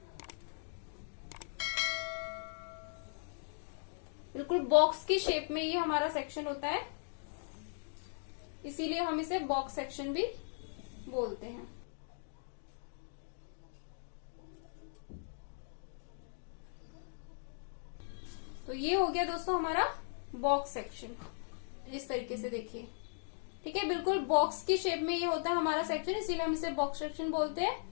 बिल्कुल बॉक्स की शेप में ये हमारा सेक्शन होता है, इसीलिए हम इसे बॉक्स सेक्शन भी बोलते हैं। तो ये हो गया दोस्तों हमारा बॉक्स सेक्शन। इस तरीके से देखिए, ठीक है, बिल्कुल बॉक्स की शेप में ये होता है हमारा सेक्शन, इसीलिए हम इसे बॉक्स सेक्शन बोलते हैं।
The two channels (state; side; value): silent; right; digital silence